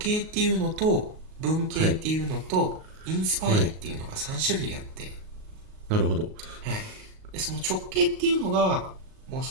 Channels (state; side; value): late; left; 38 ms